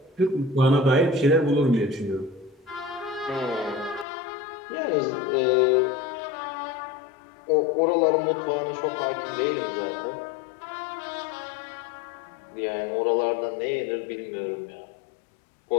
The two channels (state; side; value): drops out; right; at 4.0 s